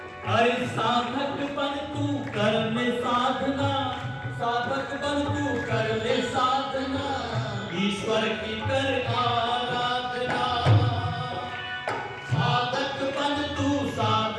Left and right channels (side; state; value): both; identical; correlation 1.00